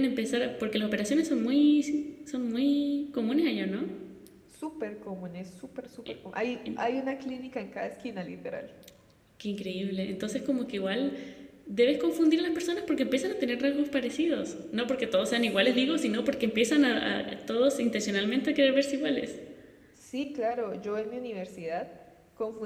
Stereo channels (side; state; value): both; identical; correlation 1.00